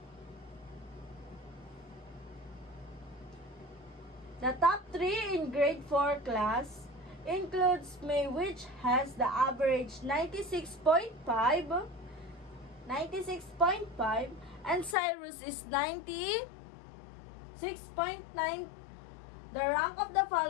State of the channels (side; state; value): right; drops out; at 15.0 s